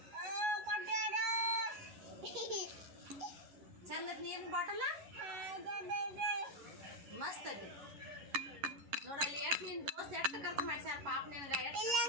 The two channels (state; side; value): late; left; 11 ms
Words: ಚಂದ ನೀರಿನ ಬಾಟಲ ಮಸ್ತ್ ಐತಿ ನೋಡಲ್ಲಿ. ಎಷ್ಟು ನಿನ್ನ ದೋಸ್ತ್ ಎಷ್ಟು ಖರ್ಚು ಮಾಡ್ಸ್ಯಾರ ಪಾಪ ನಿನಗ?